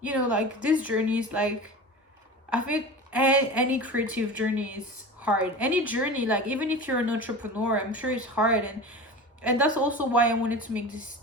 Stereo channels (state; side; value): normal; both; correlation 0.32